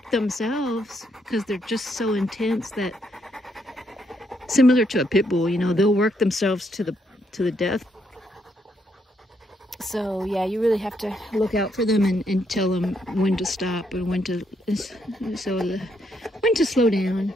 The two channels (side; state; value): both; normal; correlation 0.75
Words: themselves because they're just so intense that, similar to a pit bull, you know, they'll work themselves to the death. So yeah, you really have to look out for them and tell them when to stop and when to slow down.